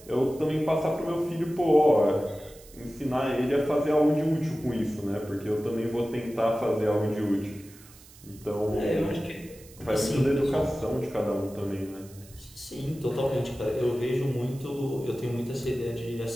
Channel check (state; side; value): noise; right; hiss, 22 dB below the sound